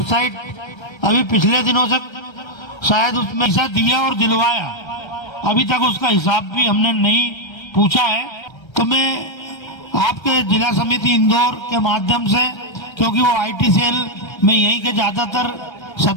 अभी पिछले दिनों से शायद उसमें पैसा दिया और दिलवाया, अभी तक उसका हिसाब भी हमने नहीं पूछा है। तो मैं आपके जिला समिति इंदौर के माध्यम से, क्योंकि वो आईटी सेल में यहीं के ज्यादातर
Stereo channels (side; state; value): right; late; 1.3 ms